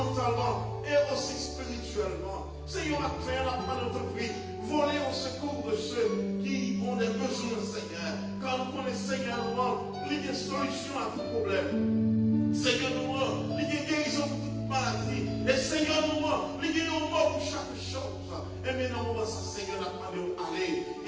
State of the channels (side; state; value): both; identical; correlation 1.00